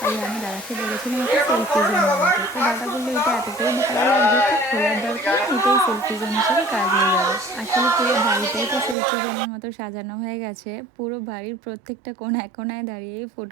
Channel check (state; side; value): drops out; left; at 9.0 s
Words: আমি দাদাকে বলেছিলাম একটা সেলফি জোন বানাতে। তো দাদা বললো এটা এতটাই ভালো লাগবে, তো খোলার দরকার নেই, এটাই সেলফি জোন হিসেবে কাজ হয়ে যাবে। আসলে পুরো বাড়িটাই তো সেলফি জোনের মতো সাজানো হয়ে গেছে, পুরো বাড়ির প্রত্যেকটা কোনায় কোনায় দাঁড়িয়ে